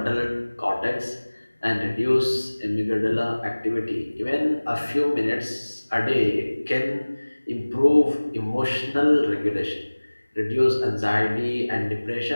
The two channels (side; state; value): both; inverted; correlation -1.00